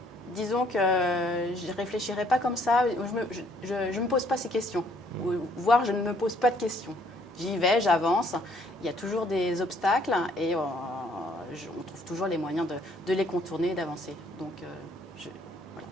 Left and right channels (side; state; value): both; normal; correlation 0.64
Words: Disons que je ne réfléchirai pas comme ça. Je ne me pose pas ces questions. Voire, je ne me pose pas de questions. J'y vais, j'avance. Il y a toujours des obstacles et on trouve toujours les moyens de les contourner et d'avancer. Donc, voilà.